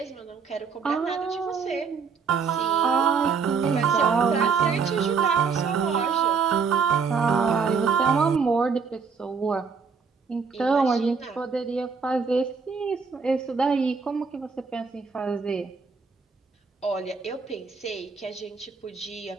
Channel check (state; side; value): quieter; left; 5.5 dB